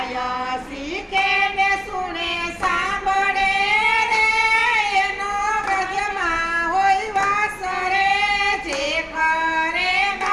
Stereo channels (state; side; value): identical; both; correlation 1.00